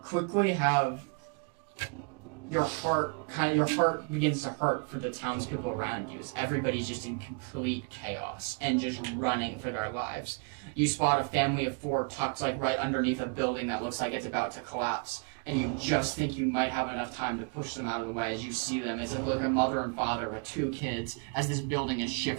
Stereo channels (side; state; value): left; quieter; 37.5 dB